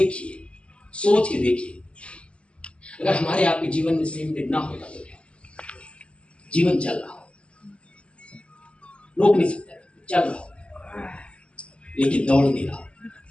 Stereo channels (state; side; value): late; right; 0.056 ms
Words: सोच के देखिए, अगर हमारे आपके जीवन में सेम डे ना होता तो क्या, जीवन चल रहा हो, रोक नहीं सकता, चल रहा हो, लेकिन दौड़ नहीं रहा।